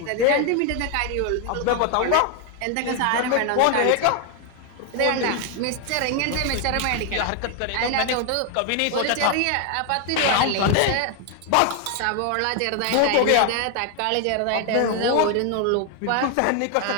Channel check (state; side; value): different; both; correlation 0.00